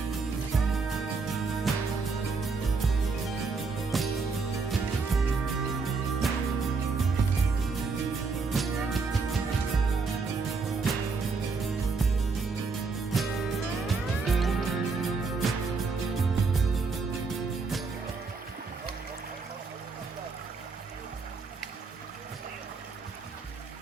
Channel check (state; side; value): quieter; left; 4.5 dB